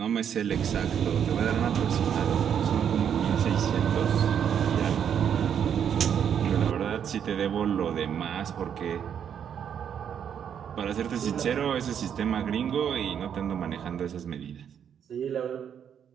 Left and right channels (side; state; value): left; quieter; 8.4 dB